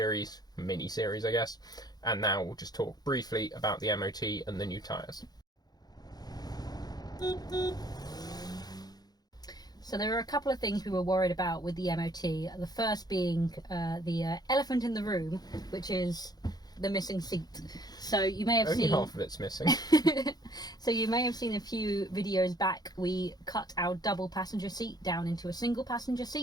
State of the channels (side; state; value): right; late; 0.19 ms